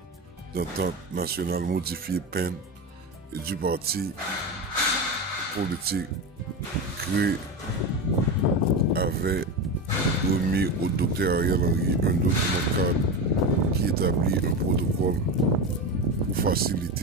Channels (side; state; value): both; normal; correlation 0.20